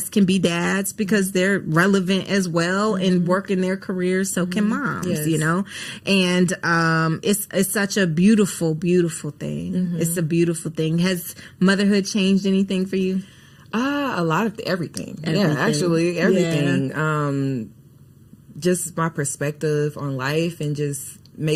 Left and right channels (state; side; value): identical; both; correlation 1.00